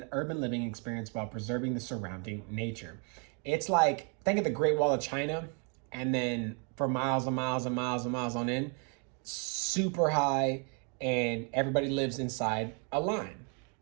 urban living experience while preserving the surrounding nature. It's like, think of the Great Wall of China, and then for miles and miles and miles and miles on end, super high, and everybody lives inside a line.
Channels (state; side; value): quieter; left; 37.6 dB